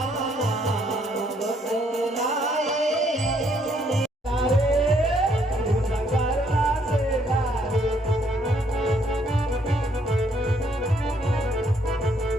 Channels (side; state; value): both; normal; correlation 0.69